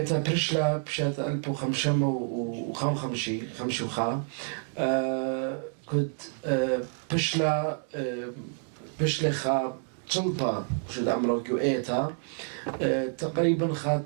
برشلا بشات 1555 كنت بشلا خا تلبا شد عمرو جو إيتا تقريبا خا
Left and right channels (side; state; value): left; silent; 59 dB below the other